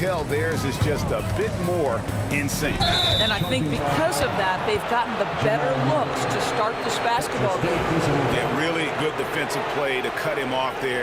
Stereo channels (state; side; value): identical; both; correlation 1.00